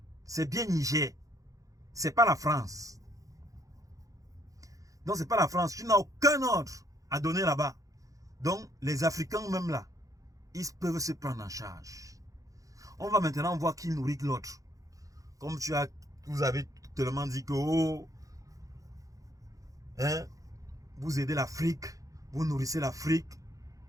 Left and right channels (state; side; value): late; left; 0.16 ms